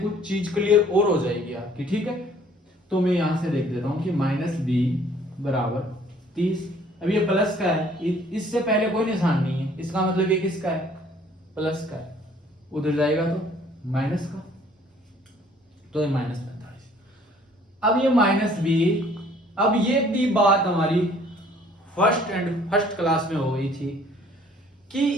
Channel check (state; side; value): normal; both; correlation 0.57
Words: चीज क्लियर और हो जाएगी आपकी। ठीक है, तो मैं यहां से देख देता हूं कि माइनस b बराबर 30। अब ये प्लस का है, इससे पहले कोई निशान नहीं है, इसका मतलब ये किसका है, प्लस का है, उधर जाएगा तो माइनस का, तो ये माइनस 45। अब ये माइनस b, अब ये भी बात हमारी फर्स्ट क्लास में हो गई थी